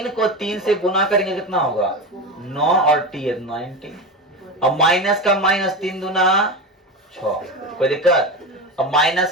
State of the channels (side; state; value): both; normal; correlation 0.22